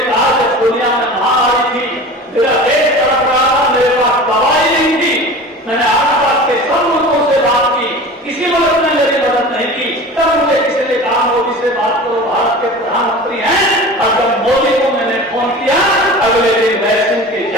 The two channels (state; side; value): normal; both; correlation 0.36